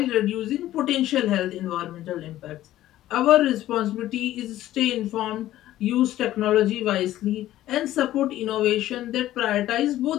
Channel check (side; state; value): right; quieter; 14.0 dB